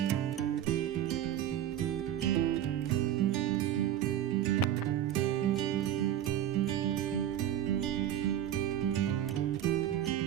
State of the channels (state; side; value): quieter; left; 11.1 dB